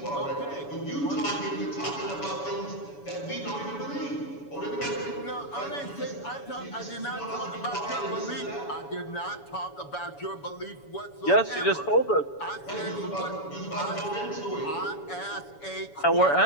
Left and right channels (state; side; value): late; right; 7.1 ms